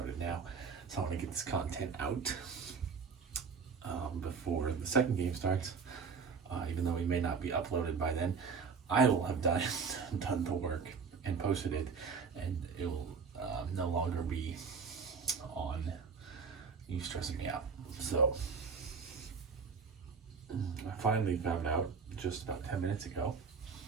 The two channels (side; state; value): left; quieter; 5.5 dB